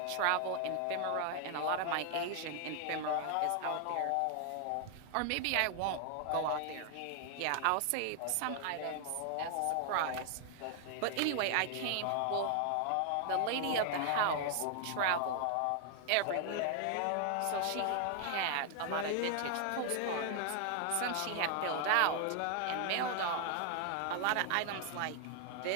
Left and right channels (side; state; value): both; different; correlation 0.00